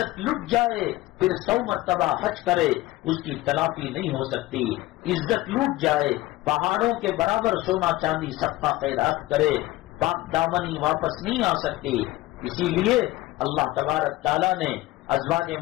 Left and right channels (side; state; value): right; quieter; 17.9 dB